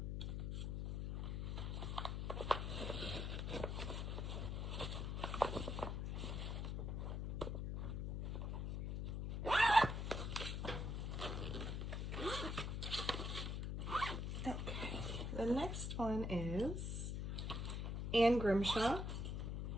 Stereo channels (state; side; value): noise; left; hum, 1 dB below the sound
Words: The next one is Anne Grimshaw,